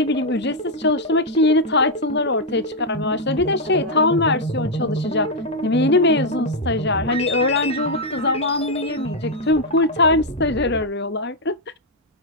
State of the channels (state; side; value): normal; both; correlation -0.01